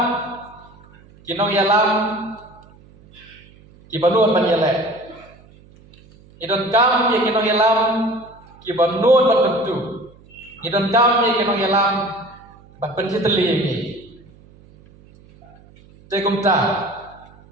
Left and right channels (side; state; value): right; noise; hum, 26 dB below the sound